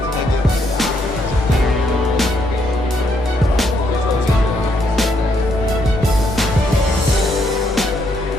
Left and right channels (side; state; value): both; normal; correlation 0.74